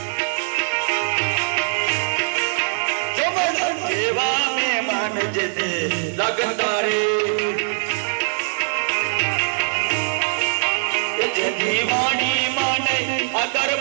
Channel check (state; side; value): silent; left; digital silence